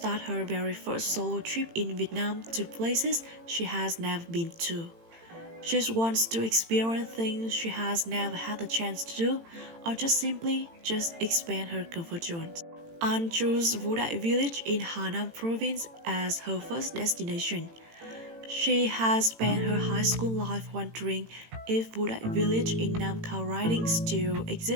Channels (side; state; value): left; late; 18 ms